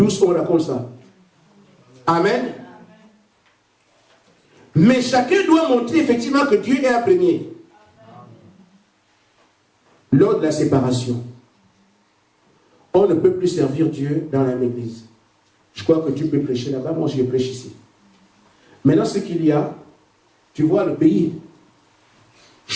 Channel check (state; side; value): identical; both; correlation 1.00